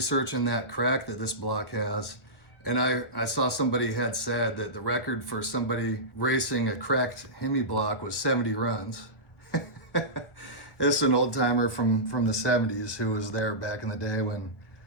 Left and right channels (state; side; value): late; right; 1.4 ms